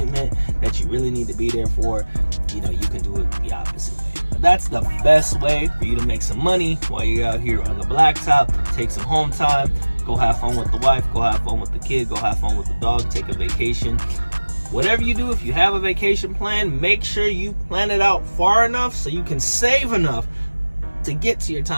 that you really need to be there for, you can do it the opposite way. But that's the best way for you to make some money while you're out here on the blacktop. Take some home time, go have fun with the wife, go have fun with the kid, go have fun with the dog, take a vacation. Whatever you do, if you have a vacation plan, make sure you plan it out far enough so you can save enough to get to your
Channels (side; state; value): both; inverted; correlation -1.00